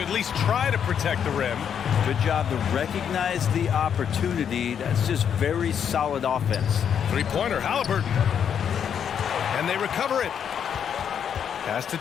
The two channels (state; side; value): quieter; right; 8.1 dB